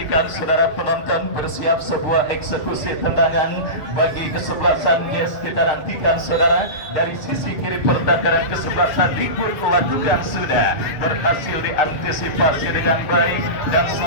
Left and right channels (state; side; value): late; right; 7.1 ms